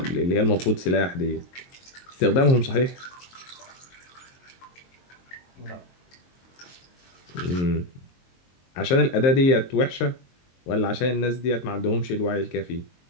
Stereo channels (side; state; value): right; late; 22 ms